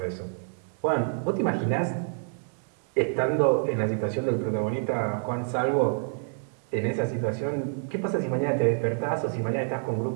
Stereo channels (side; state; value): left; silent; 55 dB below the other